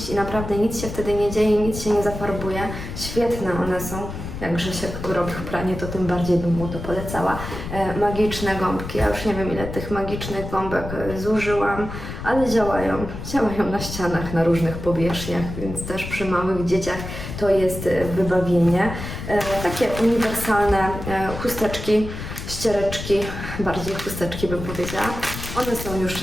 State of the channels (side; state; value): left; noise; rumble, 8 dB below the sound